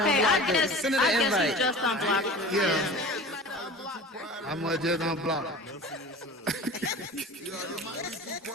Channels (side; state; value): both; normal; correlation 0.38